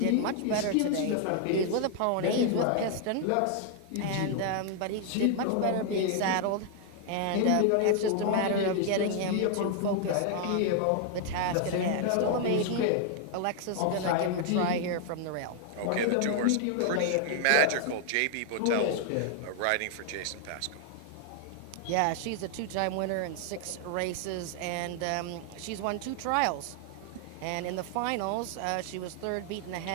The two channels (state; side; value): different; both; correlation 0.00